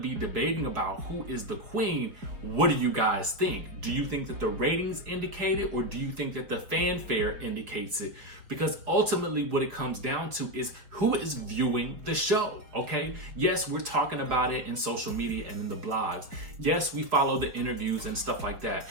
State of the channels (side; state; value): left; late; 4.8 ms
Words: debating about who is the queen, what do you guys think? Do you think that the ratings indicate it, or do you think that the fanfare indicates it? Because ultimately what it comes down to is who is viewing the show, okay? Yes, we're talking about it in social media and in the blogs. Yes, we follow the interviews and stuff like that.